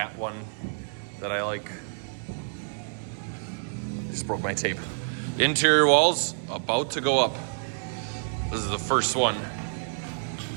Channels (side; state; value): left; silent; digital silence